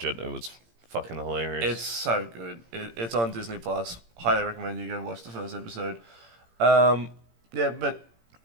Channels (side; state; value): left; late; 17 ms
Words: it. It was fucking hilarious. It's so good. It's on Disney Plus. Highly recommend you go watch the first episode. Yeah, but